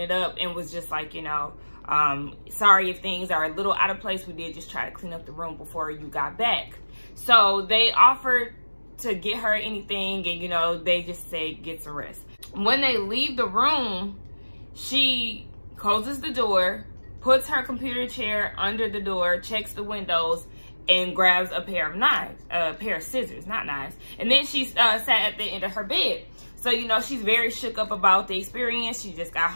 up and was just like, you know, sorry if things are a little out of place. We did just try to clean up the room before you got back. So they offered to get her anything, and, you know, they just say get some rest. When they leave the room, she closes the door, puts her computer chair under the door, checks the windows, and grabs a pair of knives, a pair of scissors, not knives. And then she sat at the end of her bed. So, you know, she's very shook up about the experience. She just got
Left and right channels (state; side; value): inverted; both; correlation -1.00